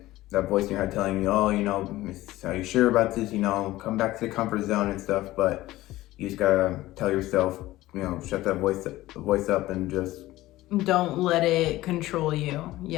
that voice in your head telling you, oh, are you sure about this? Come back to the comfort zone and stuff. But you just gotta tell yourself, shut that voice up and just don't let it control you.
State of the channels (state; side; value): quieter; right; 16.9 dB